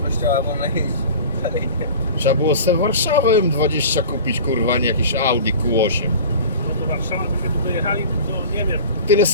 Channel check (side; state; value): both; inverted; correlation -0.38